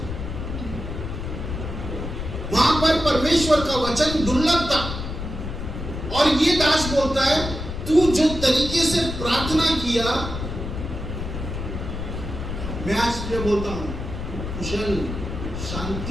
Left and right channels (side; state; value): left; noise; rumble, 6 dB below the sound